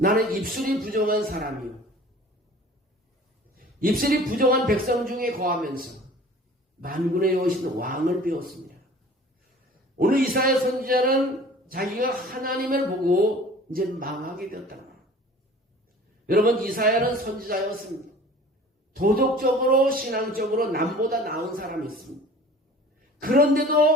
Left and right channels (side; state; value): both; normal; correlation 0.46